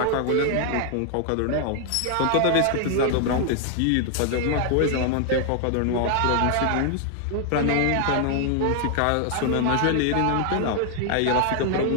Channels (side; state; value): both; different; correlation 0.00